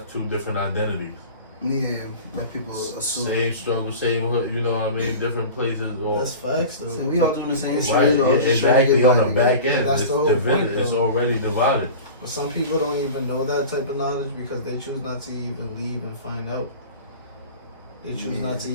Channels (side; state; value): both; inverted; correlation -0.36